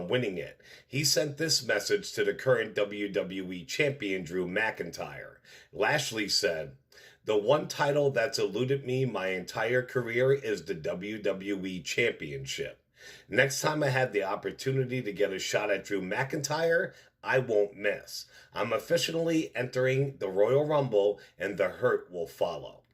winning it. He sent this message to the current WWE Champion Drew McIntyre. Lashley said, "The one title that's eluded me my entire career is the WWE Championship. Next time I have the opportunity to get a shot at Drew McIntyre, I won't miss. I'm officially entering the Royal Rumble, and the hurt will follow."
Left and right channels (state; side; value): identical; both; correlation 1.00